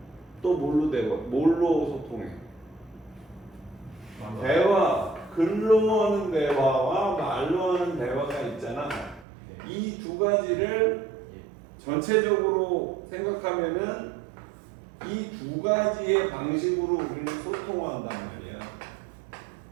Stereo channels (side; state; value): left; drops out; at 9.2 s